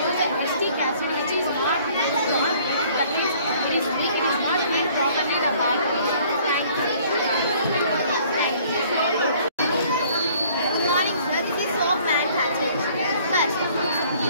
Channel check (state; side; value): inverted; both; correlation -0.57